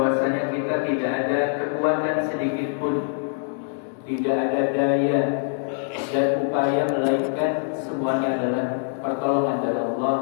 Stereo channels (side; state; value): right; silent; digital silence